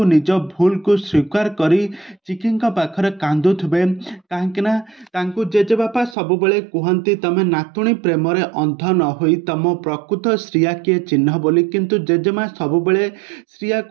निज भूल को स्वीकार करी चिकी पाखरे कांदुवे कहीं जेजेबापा सबुबले कहती तमें नातुणी प्रेम अंध न होई तम प्रकृत श्रिया किए चिन्ह बोली किंतु जेजेमा सबुबले श्रिया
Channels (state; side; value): drops out; left; at 6.2 s